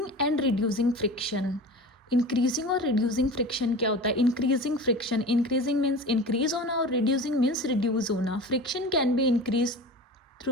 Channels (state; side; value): normal; both; correlation 0.34